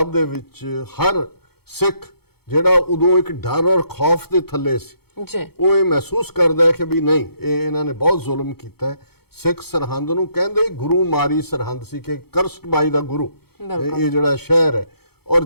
ਦੇ ਵਿੱਚ ਹਰ ਸਿੱਖ ਜਿਹੜਾ ਉਦੋਂ ਇੱਕ ਡਰ ਔਰ ਖੌਫ ਦੇ ਥੱਲੇ ਸੀ, ਉਹ ਇਹ ਮਹਿਸੂਸ ਕਰਦਾ ਹੈ ਕਿ ਵੀ ਨਹੀਂ, ਇਹ ਇਹਨਾਂ ਨੇ ਬਹੁਤ ਜ਼ੁਲਮ ਕੀਤਾ ਹੈ। ਸਿੱਖ ਸਰਹੰਦ ਨੂੰ ਕਹਿੰਦੇ ਹੀ ਗੁਰੂ ਮਾਰੀ ਸਰਹੰਦ ਸੀ ਕਿ ਕਰਸਡ ਬਾਈ ਦਾ ਗੁਰੂ ਇਹ ਜਿਹੜਾ ਸ਼ਹਿਰ ਹੈ। ਔਰ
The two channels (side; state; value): right; late; 0.96 ms